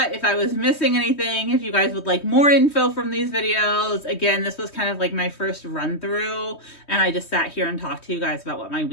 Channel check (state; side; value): late; right; 3.2 ms